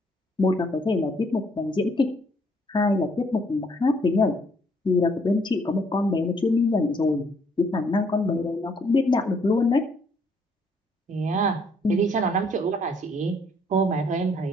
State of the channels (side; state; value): both; normal; correlation 0.67